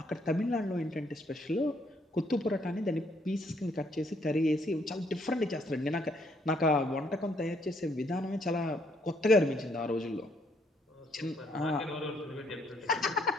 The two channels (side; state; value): both; normal; correlation 0.69